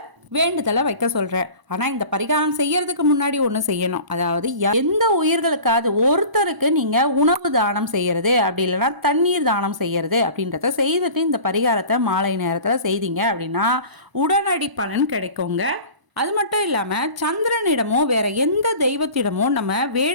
வேண்டுதலை வைக்க சொல்கிறேன். ஆனால் இந்த பரிகாரம் செய்யறதுக்கு முன்னாடி ஒன்று செய்யணும். அதாவது எந்த உயிர்களுக்காவது ஒருத்தருக்கு நீங்கள் உணவு தானம் செய்யறது, அப்படி இல்லைன்னா தண்ணீர் தானம் செய்யறது அப்படின்றத செய்துட்டு இந்த பரிகாரத்தை மாலை நேரத்தில் செய்தீங்க அப்படின்னா உடனடி பலன் கிடைக்குங்க. அது மட்டும் இல்லாமல் சந்திரனிடமோ வேற எந்த தெய்வத்திடமோ நம்ம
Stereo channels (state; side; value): late; left; 1.0 ms